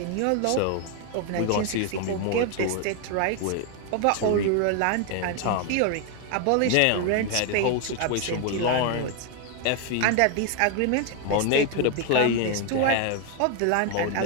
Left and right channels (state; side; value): different; both; correlation 0.01